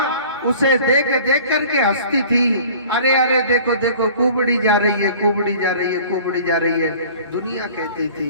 उसे देख देख करके हंसती थी। अरे अरे देखो देखो कुबड़ी जा रही है, कुबड़ी जा रही है, कुबड़ी जा रही है, दुनिया कहती थी।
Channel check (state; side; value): inverted; both; correlation -0.46